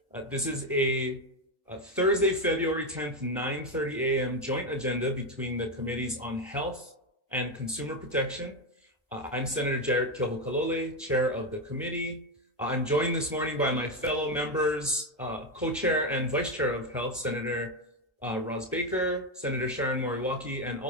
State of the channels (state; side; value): normal; both; correlation 0.09